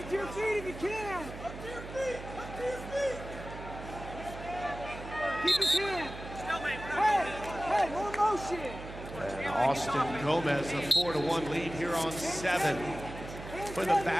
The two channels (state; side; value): noise; right; hum, 11 dB below the sound